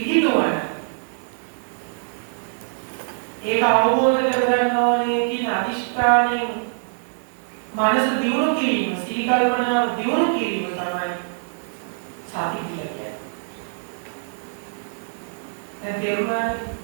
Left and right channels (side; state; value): left; silent; digital silence